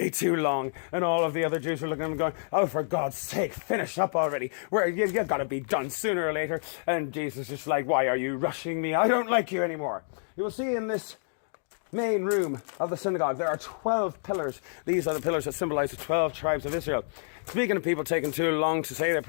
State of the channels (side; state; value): right; silent; digital silence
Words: too long. And all of the other Jews were looking at him going, oh, for God's sake, finish up already. You've got to be done sooner or later. And Jesus is just like, why are you rushing me? I don't like you anymore. You will see in this main room of the synagogue, there are 12 pillars. These are the pillars that symbolize the 12 tribes of Israel. Speaking of people taking too long to say their